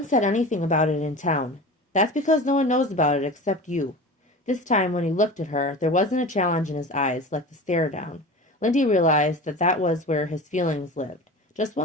said anything about it in town. That's because no one knows about it except you. This time, when he looked at her, there wasn't a challenge in his eyes, like the stare down. Lindy realized that that was where his feelings lived. Just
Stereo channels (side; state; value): both; normal; correlation 0.33